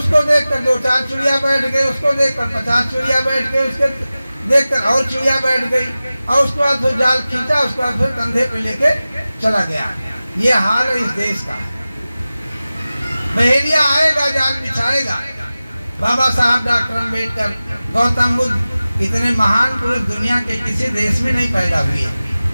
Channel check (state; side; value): inverted; both; correlation -0.97